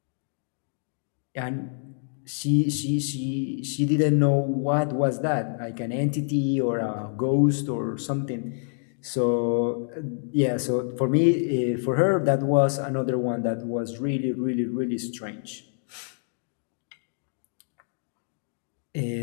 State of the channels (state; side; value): silent; right; digital silence